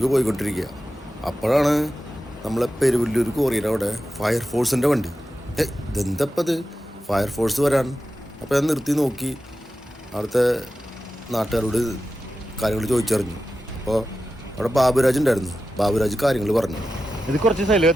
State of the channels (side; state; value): both; normal; correlation 0.92